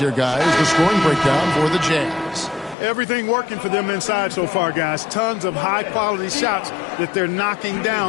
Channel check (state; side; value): drops out; right; at 2.8 s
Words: guys. The scoring breakdown for the Jazz. Everything working for them inside so far, guys. Tons of high-quality shots that they're knocking